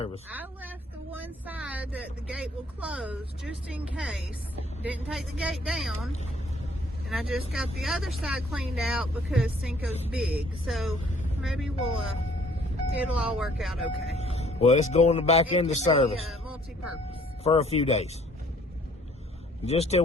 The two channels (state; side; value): normal; both; correlation 0.59